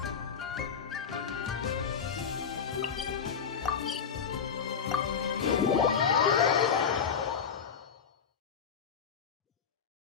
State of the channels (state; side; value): quieter; right; 6.8 dB